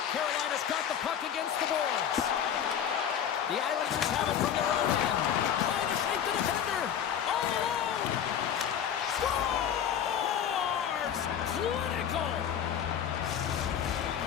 Carolina's got the puck against the boards. The Islanders have it from their own end. Trying to shake the defender. All alone. Scores! Clinical.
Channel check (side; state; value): right; quieter; 9.0 dB